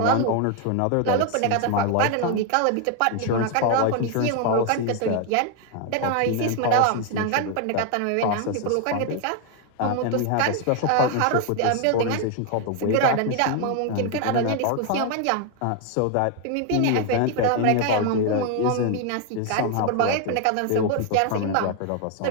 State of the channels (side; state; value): both; different; correlation 0.01